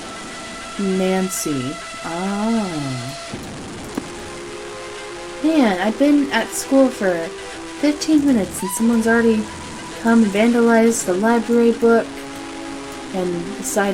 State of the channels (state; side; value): identical; both; correlation 1.00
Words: Nancy. Ah. Man, I've been at school for 15 minutes and someone's already come and vandalized the library book and